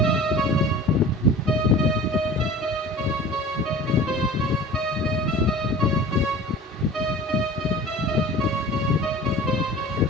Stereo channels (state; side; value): normal; both; correlation 0.40